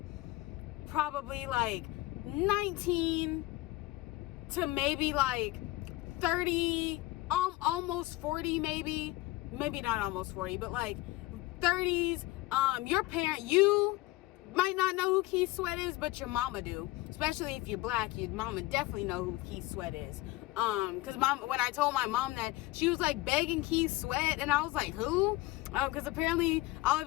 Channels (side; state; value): right; quieter; 19.3 dB